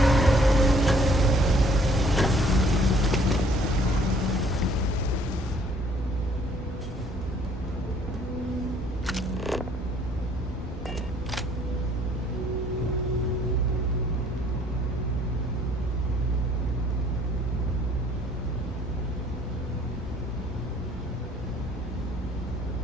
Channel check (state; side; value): normal; both; correlation 0.60